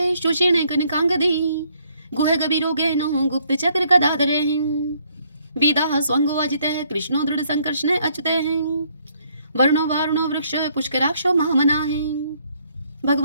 सुषेण कनकांगदी। गुह गभीरो गहनो गुप्त चक्र गदाधरे हैं। वेदा स्वंगो अजित कृष्णो दृढ़ संकर्षण अच्युत हैं। वर्णो वारुणो वृक्ष पुष्कराक्षो महामना हैं।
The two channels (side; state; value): both; inverted; correlation -0.67